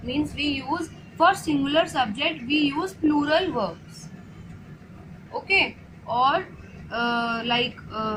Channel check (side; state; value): both; identical; correlation 1.00